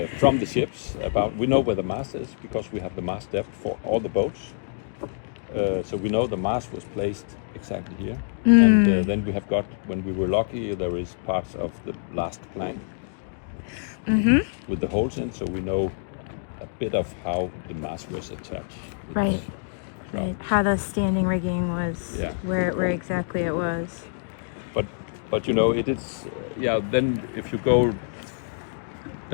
from the ships about. We know where the mast is because we have the mast depth for all the boats. So we know the mast was placed exactly here, and then we have got, when we were lucky, there is parts of the last plank with the holes in, so we know a bit of how the mast was attached. Right. Right. How the standing rigging was, where exactly it was. But you know, it is then if you go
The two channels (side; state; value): right; silent; digital silence